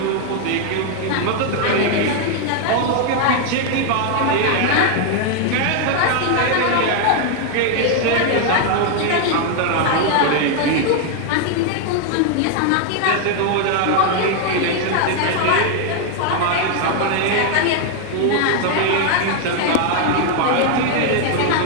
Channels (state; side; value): different; both; correlation 0.00